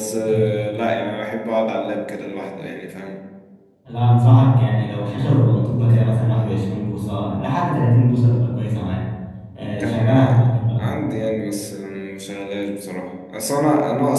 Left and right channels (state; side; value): identical; both; correlation 1.00